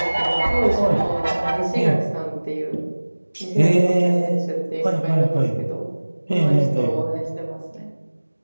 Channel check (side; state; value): both; inverted; correlation -1.00